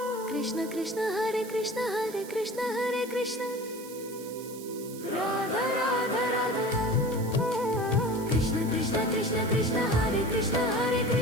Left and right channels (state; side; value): noise; right; hiss, 16 dB below the sound